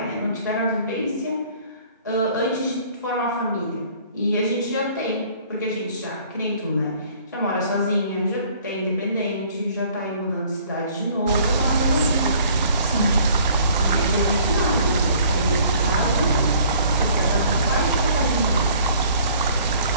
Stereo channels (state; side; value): inverted; both; correlation -0.55